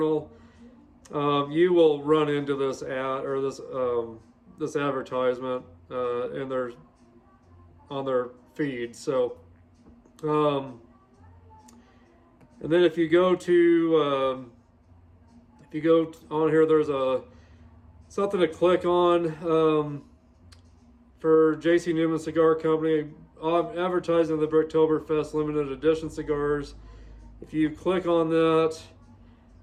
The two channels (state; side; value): identical; both; correlation 1.00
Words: you will run into this ad or this advertisement on their feed. So, and then if you go on here, there's something to click on for J.C. Newman Cigar Company advertising the Bricktoberfest limited edition cigars. If you click on that,